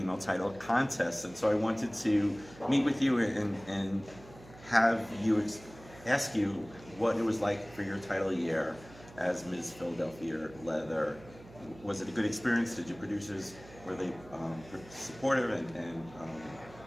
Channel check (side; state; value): right; noise; hum, 20 dB below the sound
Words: title contests, and so I wanted to meet with you and have you ask you what it was like for your title year as Ms. Philadelphia Leather. Was it a good experience? Did your producers, were they supportive and